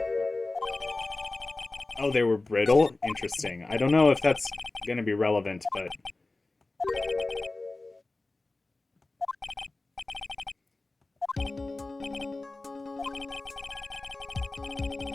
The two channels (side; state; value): right; quieter; 3.2 dB